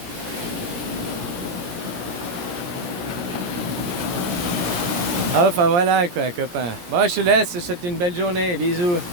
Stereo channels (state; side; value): late; left; 17 ms